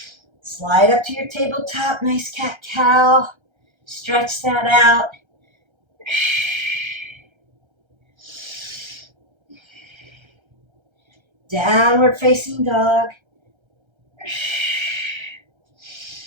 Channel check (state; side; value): late; left; 1.3 ms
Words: Slide up to your tabletop. Nice cat-cow. Stretch that out. Downward facing dog.